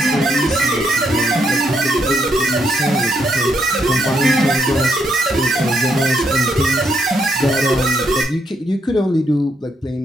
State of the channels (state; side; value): normal; both; correlation 0.76